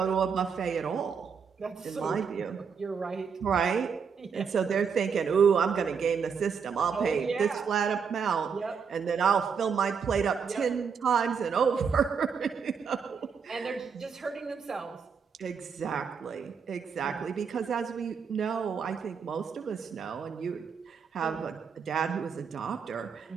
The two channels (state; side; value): quieter; left; 6.3 dB